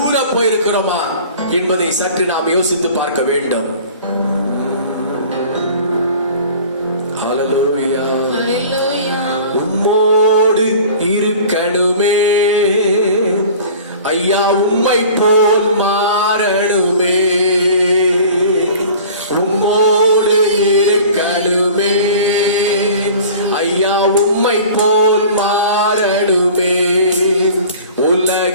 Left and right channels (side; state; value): both; inverted; correlation -0.43